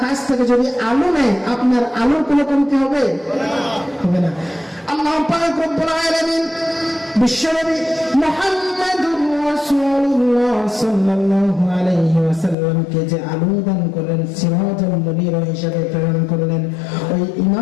কাছ থেকে যদি আলো নেয়, আপনার আলোর কোনো কমতি হবে? হবে না। আল্লাহ পাক রব্বুল আলামিন বিশ্বনবী মুহাম্মদুর রাসূলুল্লাহ সাল্লাল্লাহু আলাইহি ওয়াসাল্লামকে যে আলো দান করলেন, সিরাজাল মুনির হিসেবে প্রেরণ করলেন, ওই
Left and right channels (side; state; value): right; drops out; at 12.6 s